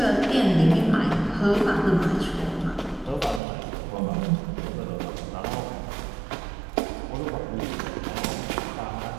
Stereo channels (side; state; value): left; drops out; at 3.4 s